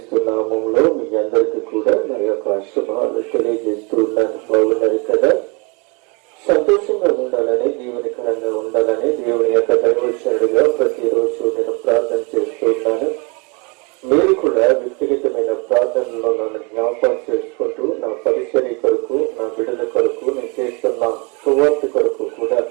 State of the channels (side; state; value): left; quieter; 30.9 dB